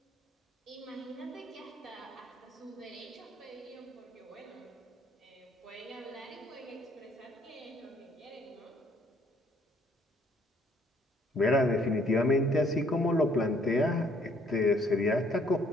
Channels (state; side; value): normal; both; correlation 0.64